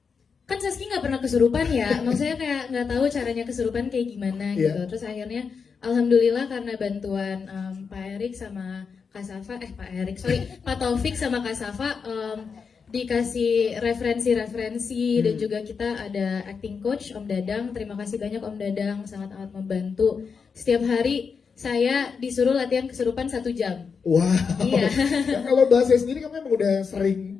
kan Saski nggak pernah kesurupan ya, maksudnya kayak nggak tahu caranya kesurupan kayak gimana gitu. Iya. Terus akhirnya alhamdulillah karena bantuan Pak Erik sama Kak Safa, Pak Taufik sama Kak Safa dikasih referensi-referensi dan juga kita ada acting coach Om Dadang. Terima kasih banyak Om Dadang, sangat amat membantu. Setiap hari saya disuruh latihan kesurupan 1 jam. Wow. Iya. Ya, kalau bahasa sendiri kamu emang udah sering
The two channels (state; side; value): quieter; right; 5.7 dB